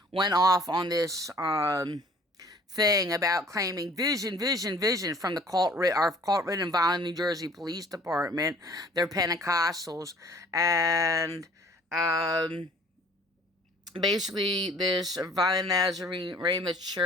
went off on this thing about claiming vision from the our cult-ridden Vineland, New Jersey Police Department. They're Pentecostals, and basically this Vineland Nazarene Ramoth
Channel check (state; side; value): normal; both; correlation 0.53